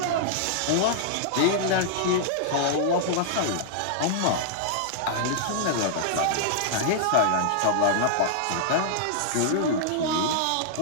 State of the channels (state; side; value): different; both; correlation -0.01